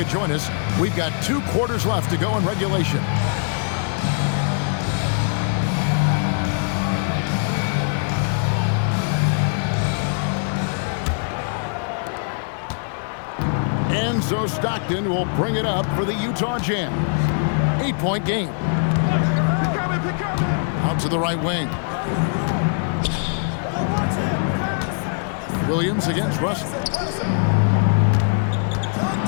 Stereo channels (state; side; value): silent; right; digital silence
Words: join us. We've got 2 quarters left to go in regulation. And so Stockton will bring it up for the Utah Jazz. 8-point game. Out to the right wing. Williams against Russell.